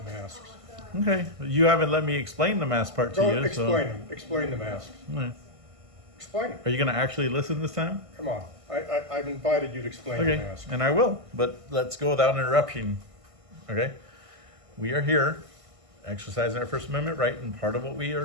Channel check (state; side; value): late; left; 1.5 ms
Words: masks. Okay. You haven't let me explain the mask part to Go you. explain them. Explain the masks. All right. Explain it. Are you going to actually listen this time? Come on. I've invited you to explain Okay, the mask. and I will, but let's go without interruption. Okay? We are here exercising our First Amendment right, and part of what we